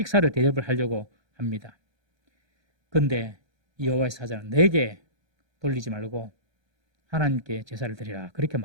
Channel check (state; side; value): late; left; 1.3 ms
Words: 대접을 하려고 합니다. 그런데 여호와의 사자는 내게 돌리지 말고 하나님께 제사를 드리라 그렇게